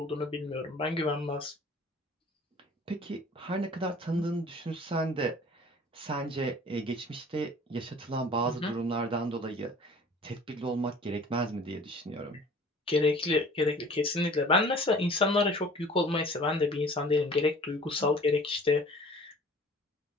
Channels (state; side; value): normal; both; correlation 0.48